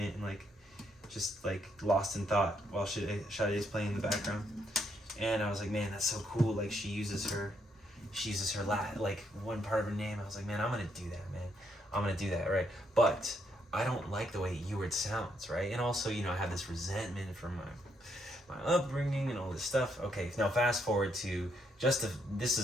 and like, just like lost in thought while Sade's playing in the background. And I was like, man, that's so cool. Like she uses her like one part of her name. I was like, man, I'm gonna do that, man. I'm gonna do that, right? But I don't like the way Ewart sounds, right? And also, I have this resentment from my upbringing and all this stuff. Okay, now fast forward to this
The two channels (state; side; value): normal; both; correlation 0.75